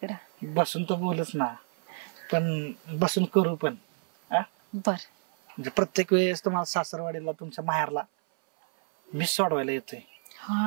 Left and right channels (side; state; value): left; silent; 59 dB below the other